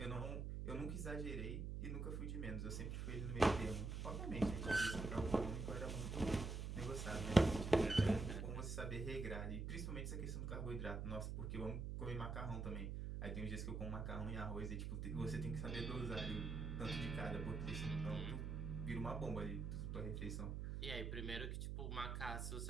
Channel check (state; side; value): noise; right; hum, 3 dB below the sound